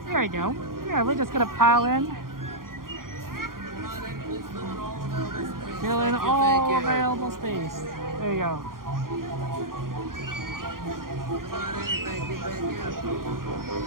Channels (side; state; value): left; late; 0.91 ms